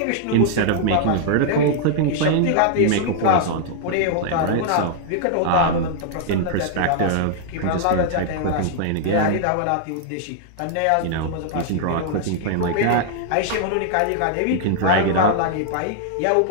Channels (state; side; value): different; both; correlation -0.01